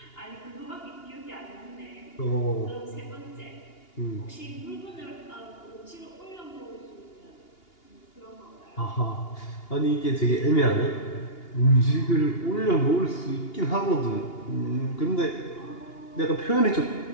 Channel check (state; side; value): late; right; 2.8 ms